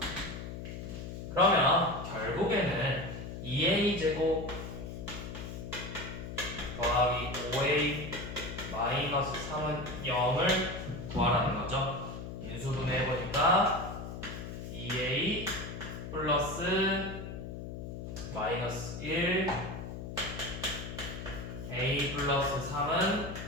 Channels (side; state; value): left; noise; hum, 8 dB below the sound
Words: 그러면 결국에는 2a제곱 더하기 5a 마이너스 3은 0을 구하라는 거죠. 인수분해 해보니까 2a 플러스 마이너스 1 a 플러스 3은